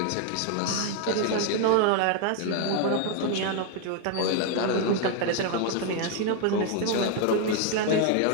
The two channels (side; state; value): both; different; correlation 0.01